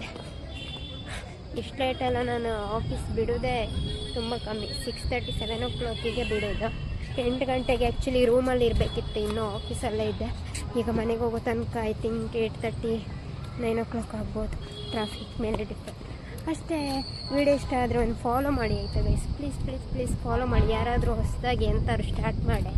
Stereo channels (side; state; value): both; identical; correlation 1.00